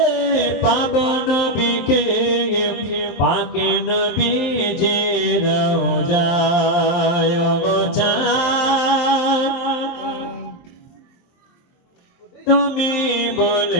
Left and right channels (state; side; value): late; right; 23 ms